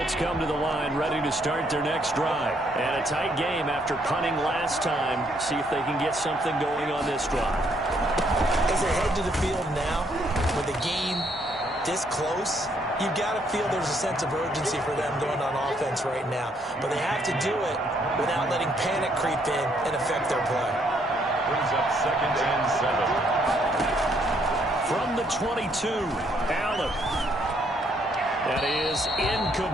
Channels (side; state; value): both; normal; correlation 0.70